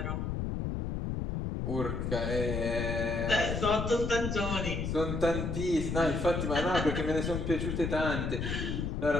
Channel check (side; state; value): left; noise; rumble, 2 dB below the sound